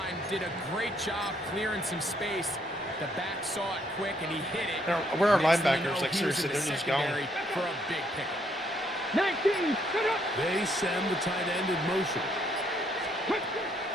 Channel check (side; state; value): both; normal; correlation 0.71